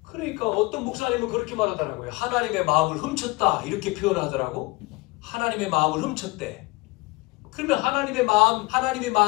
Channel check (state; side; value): quieter; right; 23.7 dB